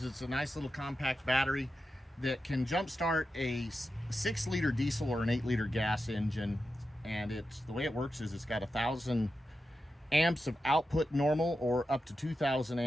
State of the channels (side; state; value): both; normal; correlation 0.90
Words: it's a nice little compact battery that can jump start a 6-liter diesel or an 8-liter gas engine. And it's the way it works is it's got 1,000 amps of output normal, or up to 2,000